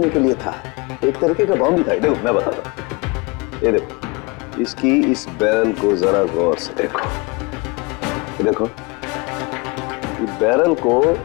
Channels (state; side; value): quieter; right; 27.4 dB